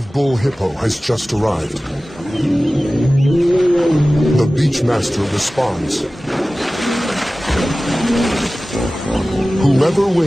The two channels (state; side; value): normal; both; correlation 0.97